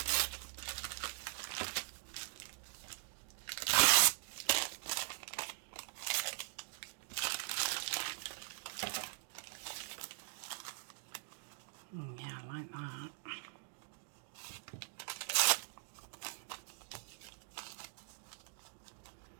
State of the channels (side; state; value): left; silent; digital silence